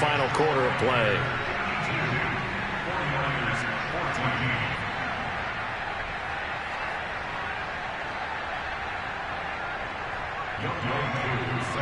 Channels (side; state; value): both; identical; correlation 1.00